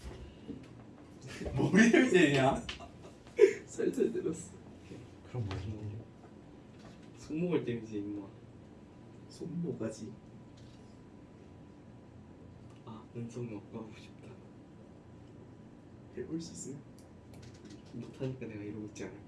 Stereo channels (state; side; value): identical; both; correlation 1.00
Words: 머리를 때냐? 살살 때렸어. 그럼 뭐 힘들려? 손목을 때리지 임마. 손모가지. 아 은성이 아까하고 싶다. 해볼 수 있어요? 못하니까 내가 이러고 있지